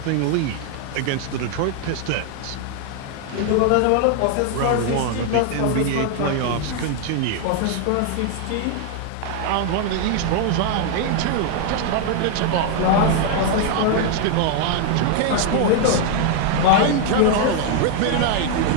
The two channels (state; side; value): different; both; correlation 0.00